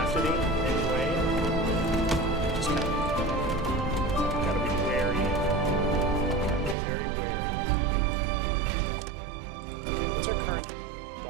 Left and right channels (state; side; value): drops out; left; at 6.8 s